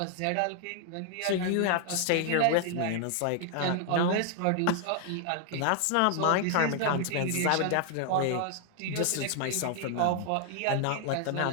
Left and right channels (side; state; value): both; different; correlation 0.00